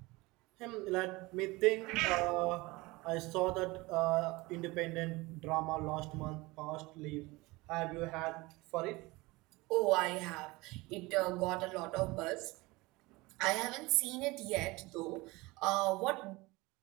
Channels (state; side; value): quieter; left; 22.5 dB